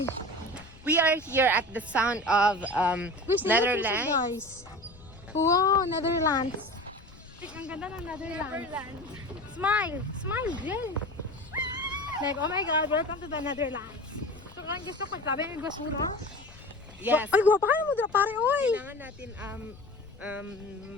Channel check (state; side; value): noise; left; rumble, 21 dB below the sound